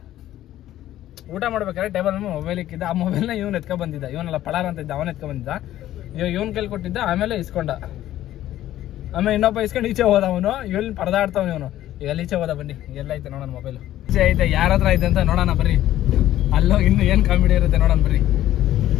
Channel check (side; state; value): right; quieter; 13.4 dB